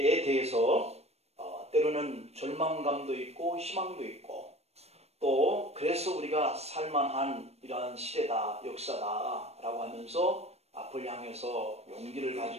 대해서 때로는 절망감도 있고 희망도 있고, 또 그래서 우리가 살만한 이러한 시대다, 역사다라고 하면서 앞을 향해서 용기를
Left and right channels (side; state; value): left; late; 0.31 ms